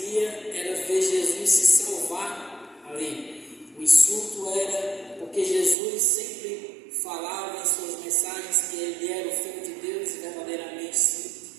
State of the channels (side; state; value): left; drops out; at 5.8 s